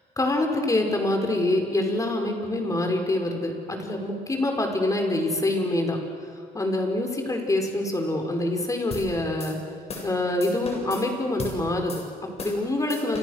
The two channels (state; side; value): normal; both; correlation 0.70